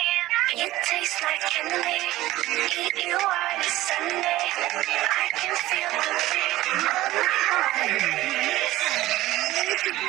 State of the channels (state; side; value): quieter; left; 16.6 dB